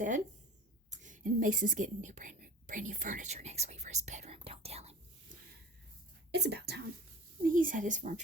and Mason's getting brand new furniture next week for his bedroom. Don't tell him. It's about time. He's had his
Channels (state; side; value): normal; both; correlation 0.40